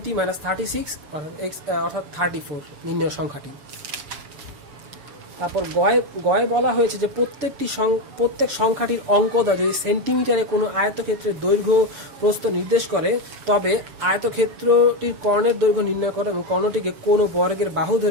মাইনাস 36, অর্থাৎ 34 নির্ণয় সংখ্যাটি। তারপর গয়ে বলা হয়েছে যে প্রত্যেক সংখ্যাটির অঙ্কটা যদি সেন্টিমিটারে কোনো আয়তক্ষেত্রের দৈর্ঘ্য প্রস্থ নির্দেশ করে, তবে আয়তক্ষেত্রটির কর্ণের দৈর্ঘ্য নির্ণয় করে এবং কর্ণটিকে কোনো বর্গের বাহু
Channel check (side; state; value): left; late; 6.8 ms